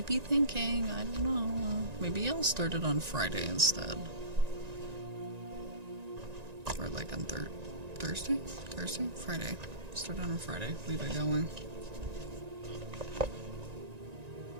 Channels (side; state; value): left; late; 1.9 ms